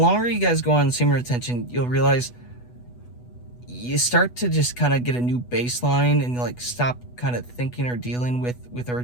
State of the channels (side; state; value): right; late; 8.2 ms